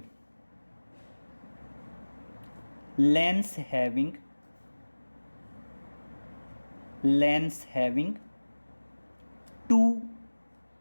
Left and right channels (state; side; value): inverted; both; correlation -1.00